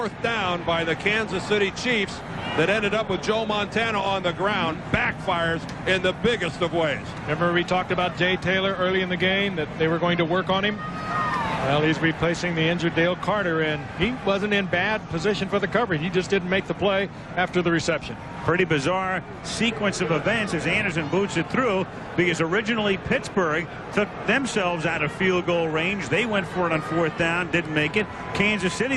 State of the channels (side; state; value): both; identical; correlation 1.00